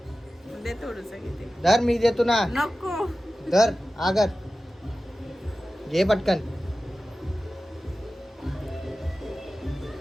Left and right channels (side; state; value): both; normal; correlation 0.95